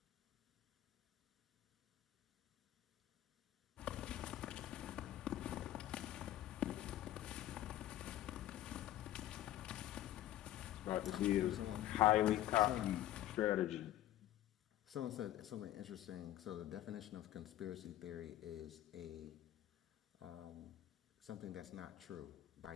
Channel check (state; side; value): quieter; right; 13.4 dB